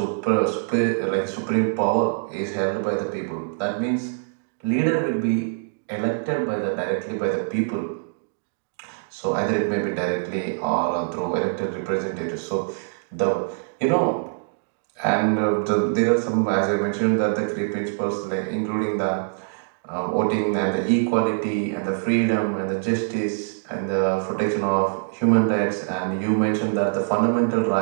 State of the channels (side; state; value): left; silent; digital silence